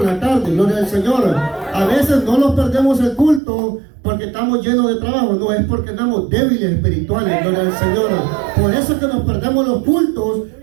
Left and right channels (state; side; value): drops out; left; at 3.4 s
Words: en la tarde, gloria al Señor. A veces no nos perdemos el culto porque estamos llenos de trabajo, no, es porque estamos débiles espirituales, gloria al Señor. Por eso es que nos perdemos los cultos